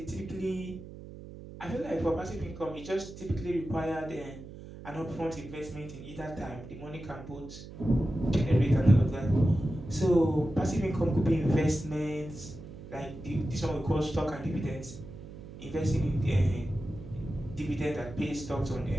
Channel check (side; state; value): right; noise; hum, 14 dB below the sound